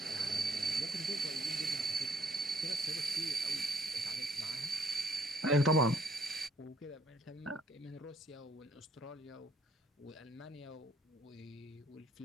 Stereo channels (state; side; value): normal; both; correlation 0.65